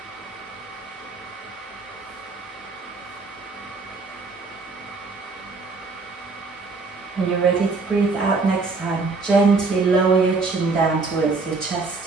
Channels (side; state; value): left; quieter; 4.0 dB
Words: When you're ready to breathe out next time, gently lower your chin down towards your chest.